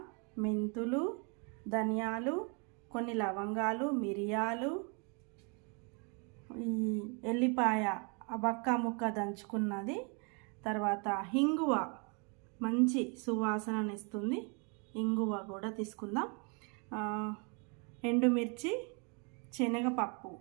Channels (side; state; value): left; quieter; 34.8 dB